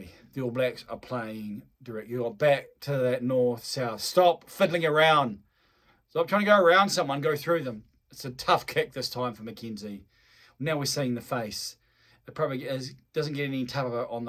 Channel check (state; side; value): identical; both; correlation 1.00